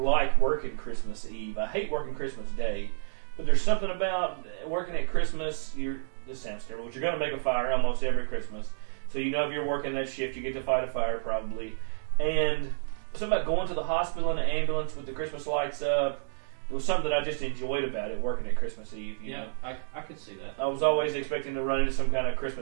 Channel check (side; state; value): left; silent; digital silence